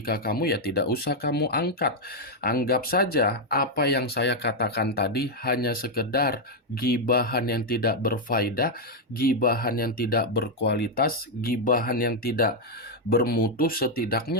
kamu, ya tidak usah kamu angkat. Anggap saja apa yang saya katakan tadi hanya sekedar gibahan yang tidak berfaedah, gibahan yang tidak berkualitas, gibahan yang tidak bermutu.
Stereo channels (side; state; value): both; normal; correlation -0.01